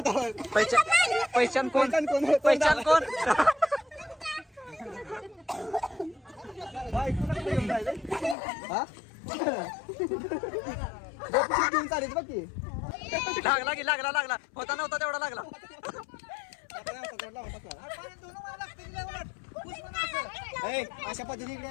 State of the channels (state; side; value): drops out; right; at 8.3 s